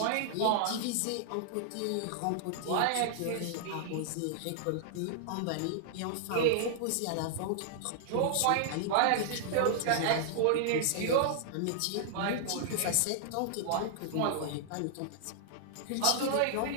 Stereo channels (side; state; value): both; different; correlation -0.01